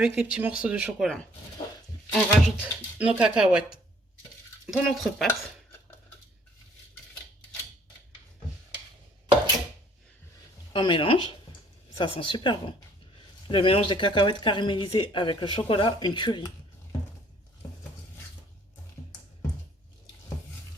les petits morceaux de chocolat. On rajoute nos cacahuètes dans notre pâte. On mélange. Ça sent super bon. Le mélange des cacahuètes caramélisées avec le chocolat, une tuerie.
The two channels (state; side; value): normal; both; correlation 0.60